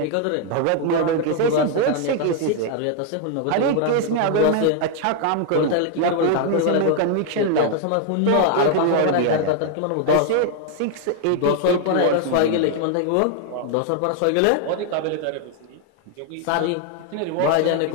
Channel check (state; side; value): different; both; correlation 0.00